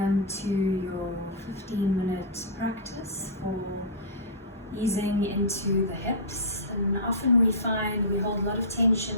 to your 15-minute practice for easing into the hips. And often we find we hold a lot of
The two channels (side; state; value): both; normal; correlation -0.19